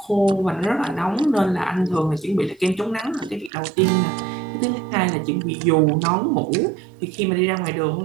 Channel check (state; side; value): drops out; left; at 3.5 s